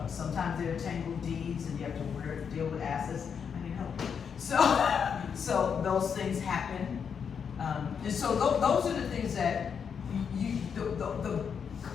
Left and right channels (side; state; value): right; quieter; 6.9 dB